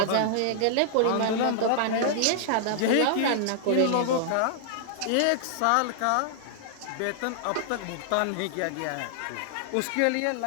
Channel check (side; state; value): both; different; correlation -0.01